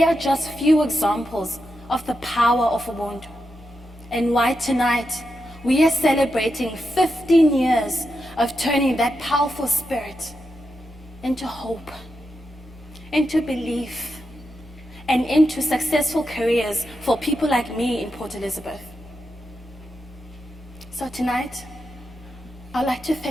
are just few examples of the power of Ubuntu, and why tonight we are celebrating 15 years of turning that powerful spirit into hope, into belief, and into successful careers for people like me in Port Elizabeth. So tonight, I'd like to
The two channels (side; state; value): both; normal; correlation 0.86